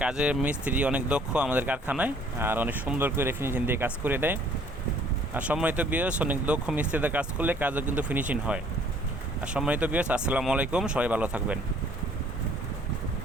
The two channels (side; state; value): both; normal; correlation 0.58